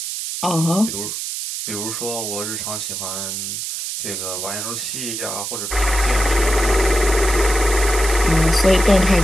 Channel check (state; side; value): noise; right; hiss, 5 dB below the sound